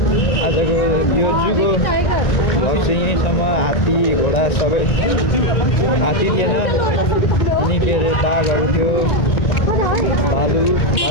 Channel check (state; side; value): late; right; 1.9 ms